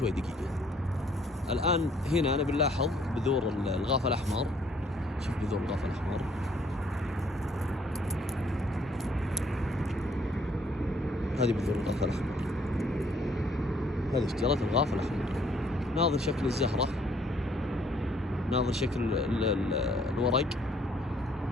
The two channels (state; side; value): normal; both; correlation 0.64